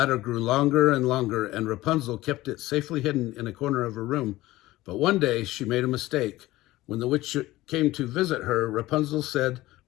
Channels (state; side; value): quieter; right; 17.4 dB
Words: grew longer and longer, and Rapunzel kept it safely hidden in a corner of her room. But one day she made a mistake. When the witch came to visit her, Rapunzel said,